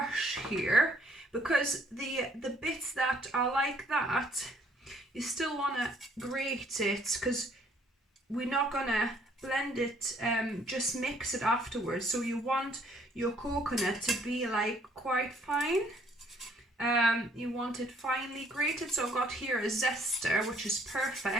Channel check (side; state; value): both; normal; correlation 0.63